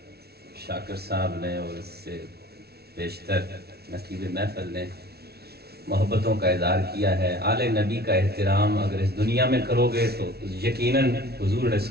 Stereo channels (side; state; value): left; late; 0.46 ms